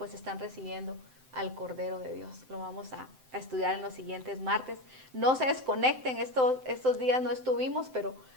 están recibiendo al Cordero de Dios. Lo vamos a estudiar en los siguientes martes. No se desconecten, estos días no estuvimos, pero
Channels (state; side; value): late; left; 7.8 ms